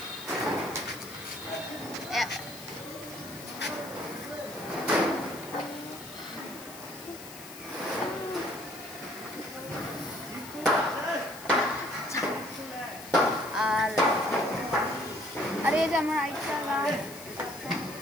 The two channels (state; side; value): noise; left; hiss, 15 dB below the sound